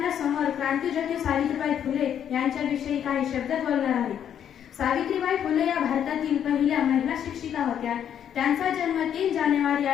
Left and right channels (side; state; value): right; quieter; 9.3 dB